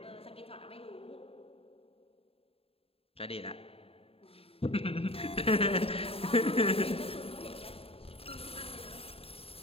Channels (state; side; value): late; right; 0.28 ms